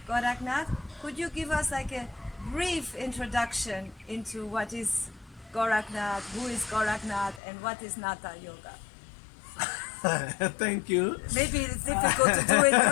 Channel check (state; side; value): drops out; right; at 7.4 s